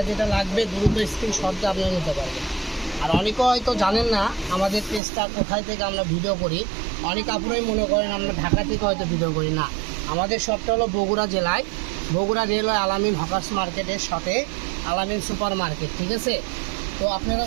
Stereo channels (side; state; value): left; drops out; at 5.0 s